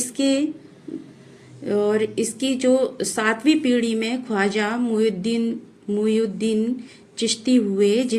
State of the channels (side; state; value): both; identical; correlation 1.00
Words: इसकी जो 7वीं पीढ़ी में ख्वाजा मुइनुद्दीन चिश्ती हुए